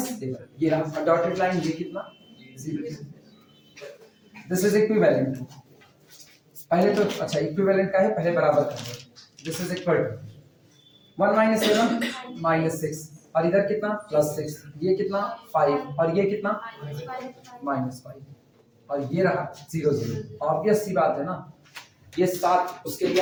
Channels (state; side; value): identical; both; correlation 1.00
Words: 7 ये रहा। डॉटेड लाइन ये कितना? 0। This is equivalent. पहले तो अच्छा इक्विवेलेंट का है, पहले बराबर कर दो। This is equal to 1 minus 7 minus 6 और इधर कितना? प्लस 6। ये कितना? 5 और ये कितना? माइनस 5 और ये रहा 0 0। ऑब्वियस सी बात है ना, ये 7 उसके लिए